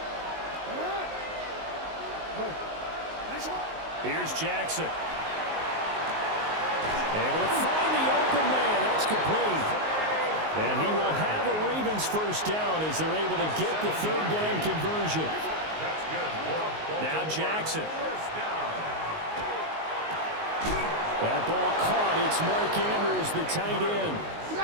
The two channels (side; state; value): left; late; 19 ms